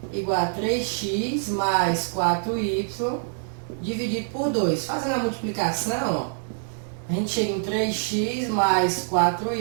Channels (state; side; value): silent; left; digital silence